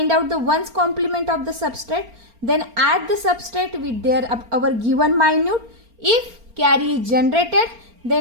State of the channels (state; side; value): late; left; 4.3 ms